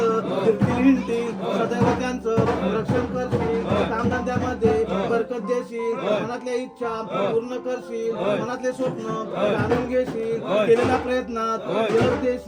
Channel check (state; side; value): identical; both; correlation 1.00